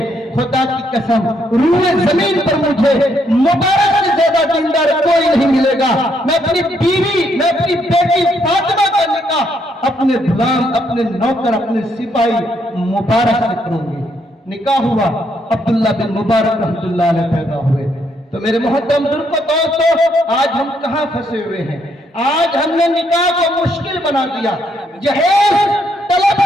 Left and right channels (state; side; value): normal; both; correlation 0.73